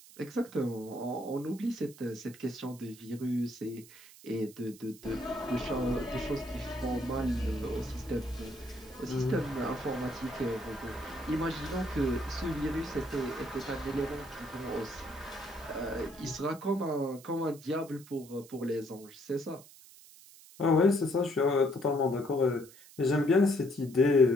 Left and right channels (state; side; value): noise; right; hiss, 21 dB below the sound